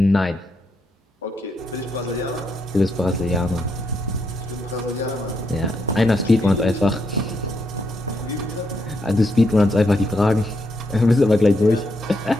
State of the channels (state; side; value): normal; both; correlation 0.79